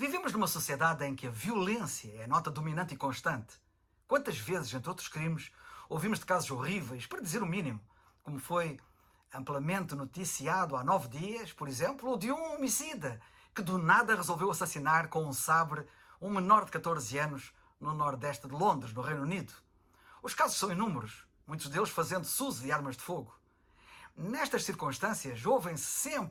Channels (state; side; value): identical; both; correlation 1.00